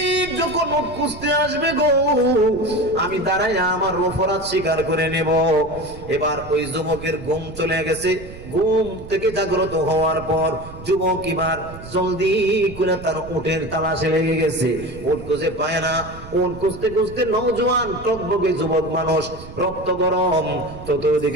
যখন উট খুঁজতে আসবে গো, আমি দাঁড়াইয়া আমার অপরাধ স্বীকার করে নেব। এবার ওই যুবকের ঘুম চলে গেছে। ঘুম থেকে জাগ্রত হওয়ার পর যুবক এবার জলদি করে তার উটের তালাশে লেগে গেছে। উট খুঁজে পায় না। উট খুঁজতে খুঁজতে নওজোয়ান টকবকে যুবক মানুষ, রক্ত গরম,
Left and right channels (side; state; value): right; noise; rumble, 15 dB below the sound